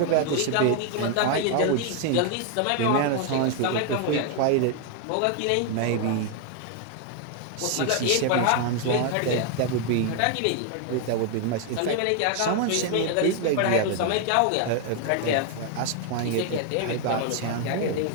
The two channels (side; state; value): both; different; correlation 0.00